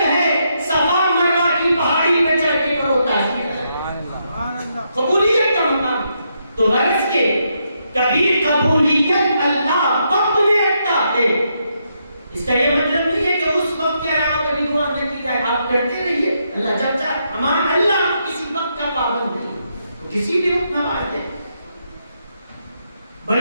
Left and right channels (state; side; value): inverted; both; correlation -0.79